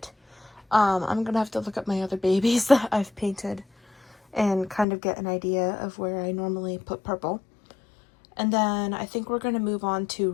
I'm gonna have to look at my other babies that I've painted and kind of get an idea of where I normally put purple. And then I think we're gonna move on to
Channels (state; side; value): drops out; right; at 4.9 s